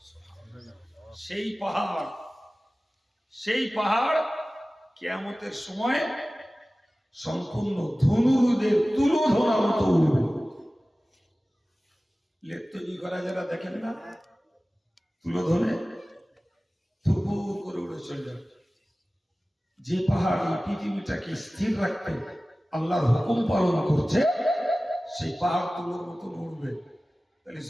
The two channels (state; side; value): normal; both; correlation 0.97